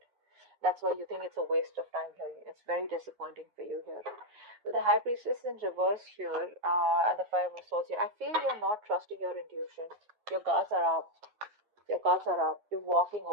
That's why you think it's a waste of time here. It's very disappointing for you here. With the High Priestess in reverse here, and the Five of Swords here, I feel you're not trusting your intuition. Your guards are up. Your cards are up. You're walking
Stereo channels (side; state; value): left; late; 9.4 ms